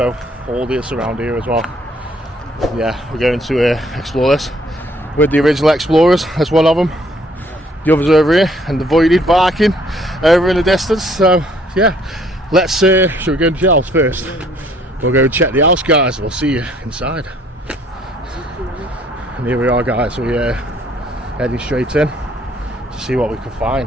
all this around here as well. Yeah, we're going to explore this with the original explorers. That's one of them. The others over here and the voided barking over in the distance. So yeah, let's should we go into the house first? We'll go check the house guys, we'll see you inside. And here we are guys, we're heading straight in to see what we can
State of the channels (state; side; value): normal; both; correlation 0.62